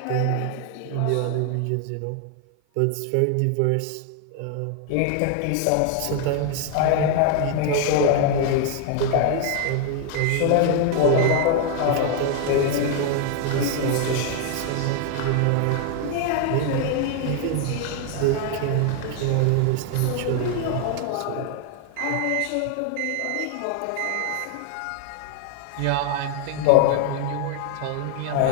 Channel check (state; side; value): different; both; correlation 0.00